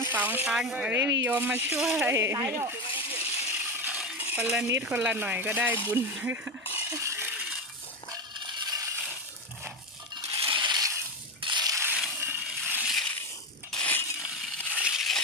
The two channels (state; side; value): normal; both; correlation 0.16